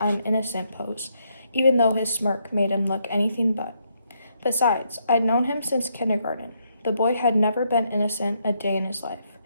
"I'm innocent" pose, even though his smirk made him look anything but. Besides, I'd known him since kindergarten. The boy had never been innocent a day in his life.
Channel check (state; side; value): inverted; both; correlation -0.75